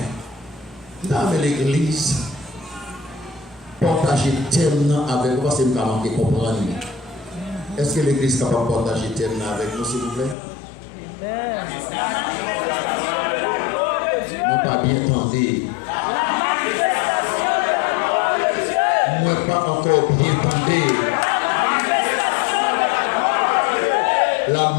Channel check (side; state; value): right; drops out; at 10.4 s